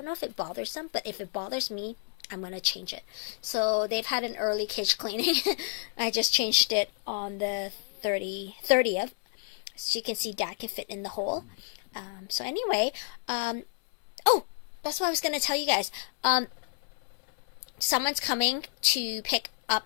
it bothers them, but if it bothers me, I'm going to change it. So they've had an early cage cleaning. I just changed it on the 30th. So you can see Dad can fit in the hole. So anyway, oh, that's what I was going to tell you guys. Someone's coming to pick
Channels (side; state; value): right; silent; 58 dB below the other